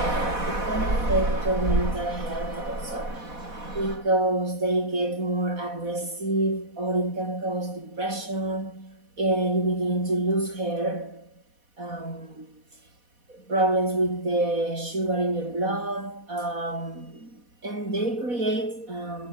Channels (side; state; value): left; late; 4.1 ms